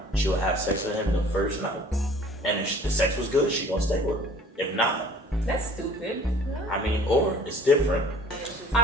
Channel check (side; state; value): both; normal; correlation 0.50